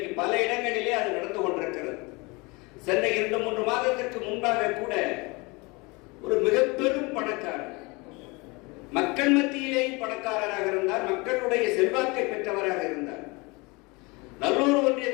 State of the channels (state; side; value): quieter; right; 26.5 dB